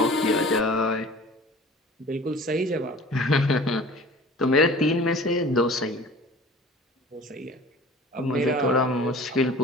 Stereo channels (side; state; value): both; normal; correlation 0.43